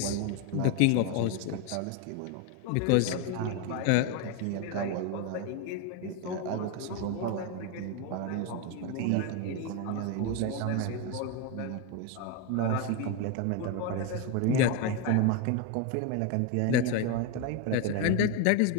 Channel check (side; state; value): both; different; correlation 0.02